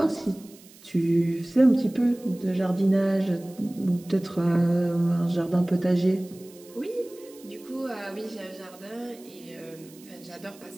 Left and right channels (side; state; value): right; noise; hiss, 23 dB below the sound